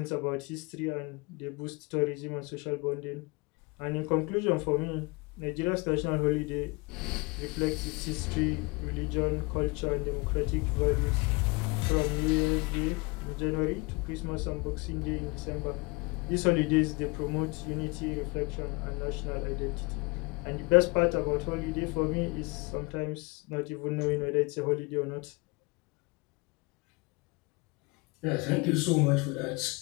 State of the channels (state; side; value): quieter; right; 27.3 dB